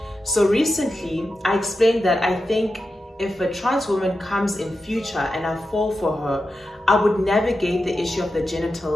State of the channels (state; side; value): normal; both; correlation 0.90